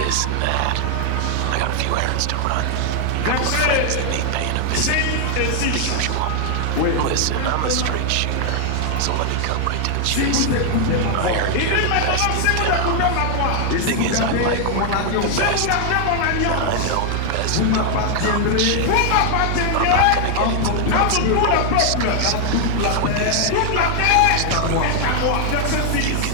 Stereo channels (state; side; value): different; both; correlation 0.00